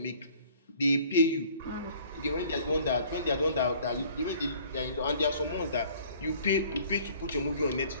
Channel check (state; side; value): inverted; both; correlation -0.54